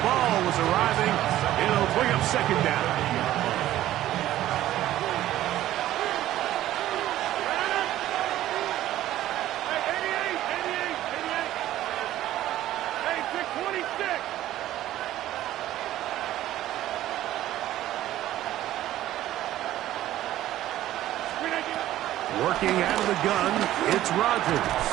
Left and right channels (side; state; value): left; quieter; 13.8 dB